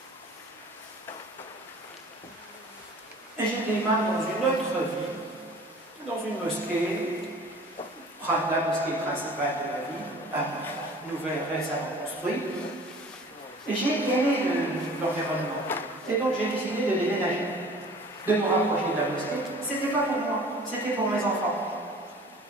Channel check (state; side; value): normal; both; correlation 0.46